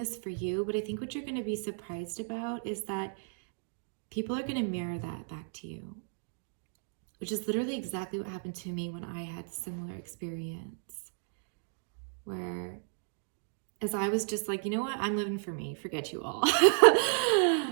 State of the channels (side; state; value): left; silent; digital silence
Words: for you, but I think what you're going to be surprised about is that people are going to mirror that back to you, which is literally exactly what happened to me when I had a similar experience, where as I was just like, you know what, I'm living for me, forget you all.